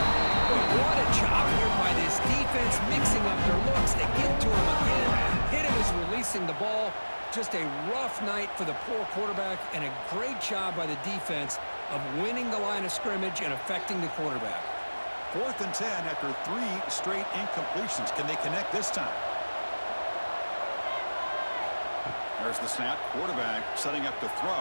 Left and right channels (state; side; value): inverted; both; correlation -1.00